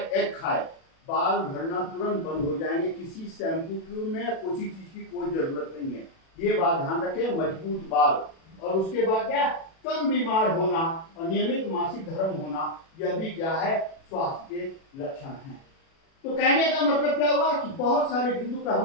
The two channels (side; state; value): right; late; 37 ms